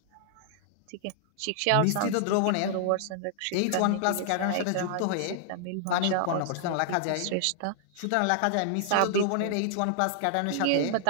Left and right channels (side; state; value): both; different; correlation -0.01